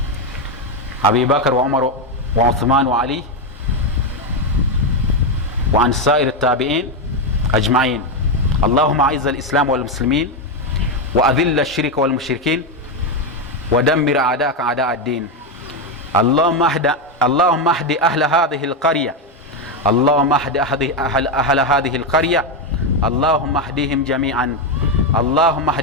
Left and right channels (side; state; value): both; normal; correlation 0.07